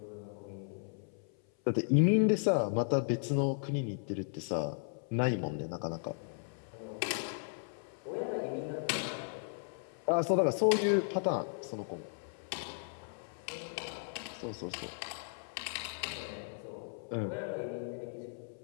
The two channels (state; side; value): silent; right; 54 dB below the other